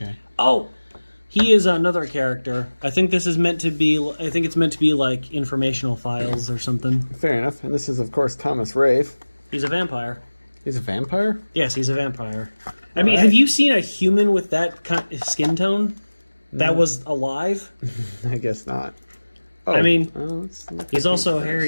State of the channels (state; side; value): inverted; both; correlation -1.00